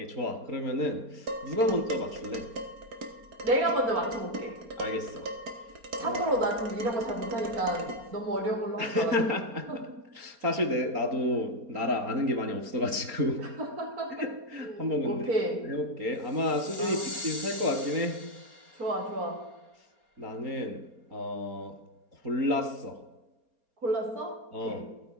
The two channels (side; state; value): left; late; 4.3 ms